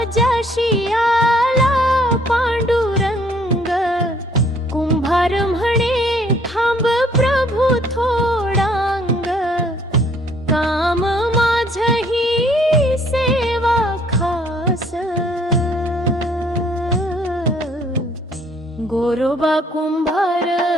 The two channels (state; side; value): normal; both; correlation 0.61